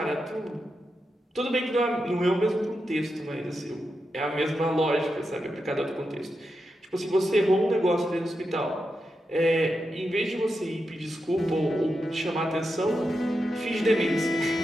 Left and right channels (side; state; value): both; normal; correlation 0.87